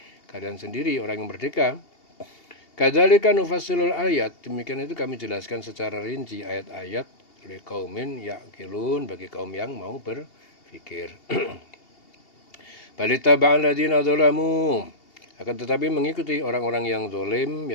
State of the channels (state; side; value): late; right; 2.8 ms